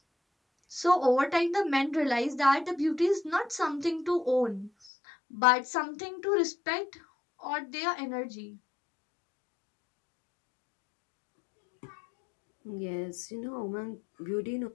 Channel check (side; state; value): right; drops out; at 4.7 s